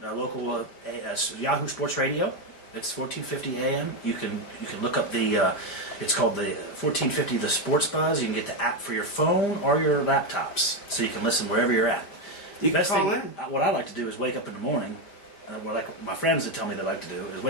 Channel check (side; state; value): right; late; 5.0 ms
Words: local Yahoo Sports Radio. It's 1450 AM. You can look up it's called the 1450 The Sports Buzz. You can get the app for your phone or your laptops, so you can listen wherever you're at. You can Best call thing, in. what I like to do is wake up in the morning. What like my friends that tell me they like to do is